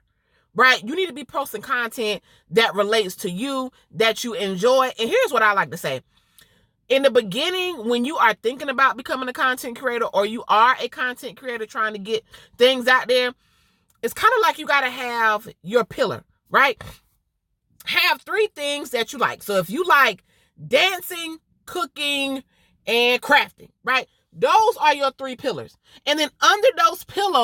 Right? You need to be posting content that relates to you, that you enjoy. And here's what I like to say. In the beginning, when you are thinking about becoming a content creator, or you are a content creator trying to get things out there, it's kind of like you got to have your pillar, right? Have 3 things that you like. So if you like dancing, cooking, and crafting, right? Those are your 3 pillars. And then under those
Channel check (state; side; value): identical; both; correlation 1.00